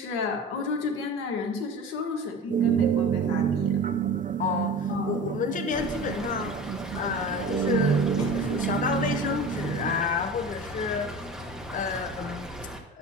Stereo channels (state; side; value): normal; both; correlation 0.34